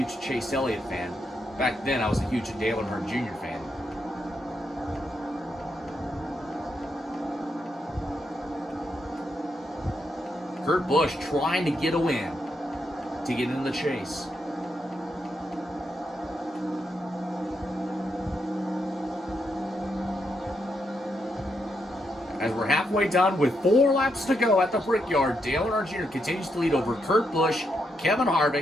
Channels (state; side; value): normal; both; correlation 0.81